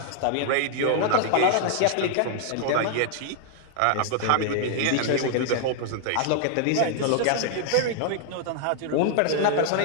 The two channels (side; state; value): both; different; correlation 0.00